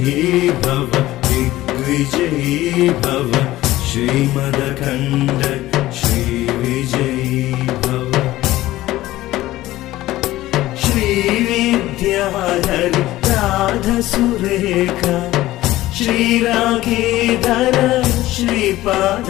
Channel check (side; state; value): right; quieter; 16.3 dB